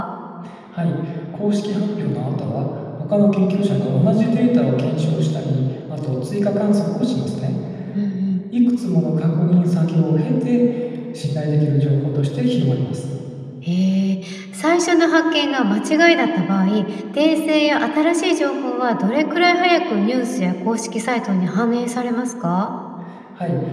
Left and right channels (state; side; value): identical; both; correlation 1.00